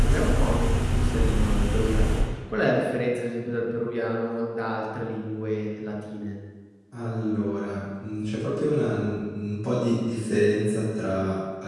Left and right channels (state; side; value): identical; both; correlation 1.00